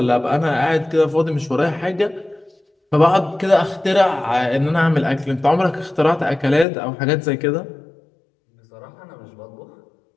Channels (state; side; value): drops out; right; at 6.7 s